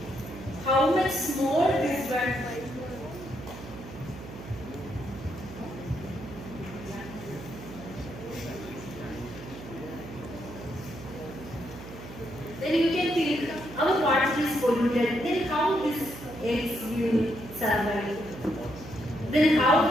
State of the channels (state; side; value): noise; right; hum, 13 dB below the sound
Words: How much small this one? Then you can think our water is polluted. Then how these eggs will survive? Then